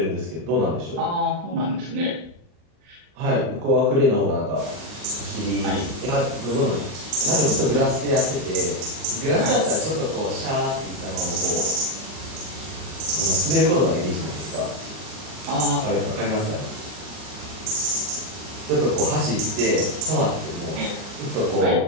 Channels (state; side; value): late; left; 40 ms